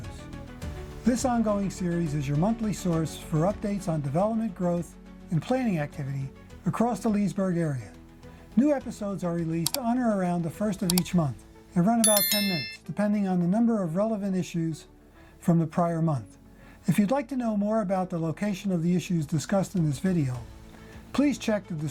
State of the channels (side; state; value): both; identical; correlation 1.00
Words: This ongoing series is your monthly source for updates on development, growth, and planning activity across the Leesburg area. New episodes are released on or around the first of each month and run about 10 minutes, depending on the number of relevant issues from the prior month. If you'd like to know more about the location of the issues discussed in this video, please check the